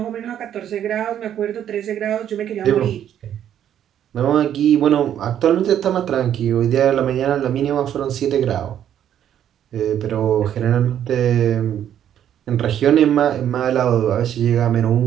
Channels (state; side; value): quieter; left; 10.2 dB